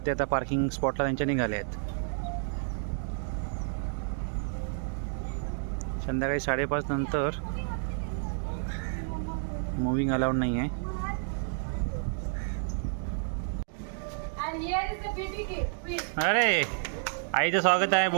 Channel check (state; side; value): silent; left; 58 dB below the other